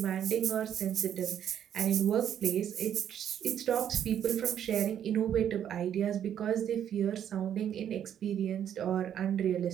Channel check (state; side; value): quieter; left; 9.6 dB